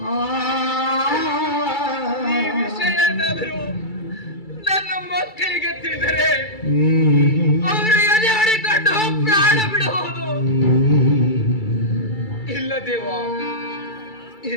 ಈ ವಿಷಯ ಏನಾದರೂ ನನ್ನ ಮಕ್ಕಳಿಗೆ ತಿಳಿದರೆ ಅವರು ಎದೆ ಹೊಡಿಕೊಂಡು ಪ್ರಾಣ ಬಿಡಬಹುದು. ಇಲ್ಲ ದೇವ,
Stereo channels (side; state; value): right; late; 2.3 ms